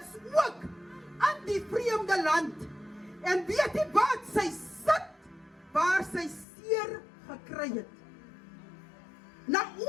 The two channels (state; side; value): drops out; right; at 6.5 s